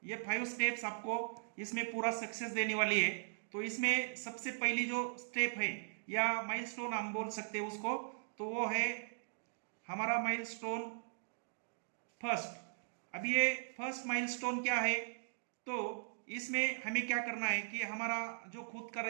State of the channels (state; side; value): silent; left; digital silence